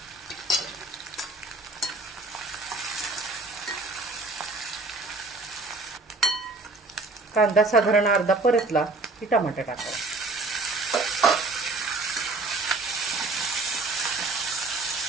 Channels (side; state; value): left; quieter; 3.3 dB